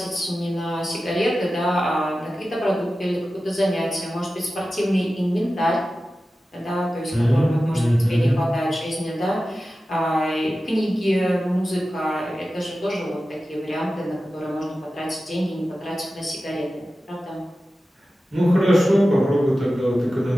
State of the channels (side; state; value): both; normal; correlation 0.94